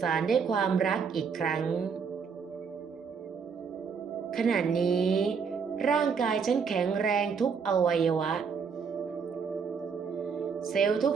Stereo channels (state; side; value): quieter; left; 6.0 dB